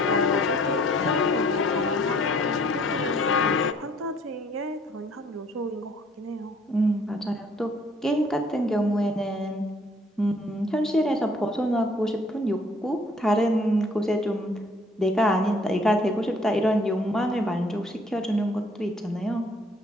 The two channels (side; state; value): both; normal; correlation 0.61